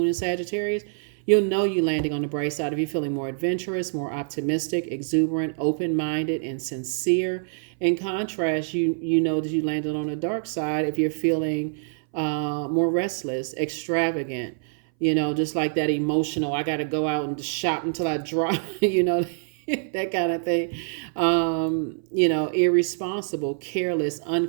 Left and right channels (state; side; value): silent; left; 60 dB below the other